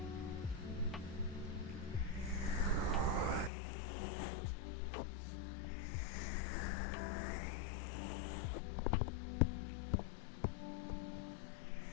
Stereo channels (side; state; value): right; drops out; at 3.5 s